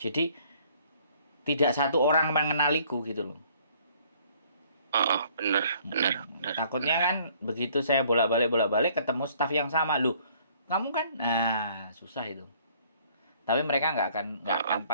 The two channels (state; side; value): inverted; both; correlation -0.60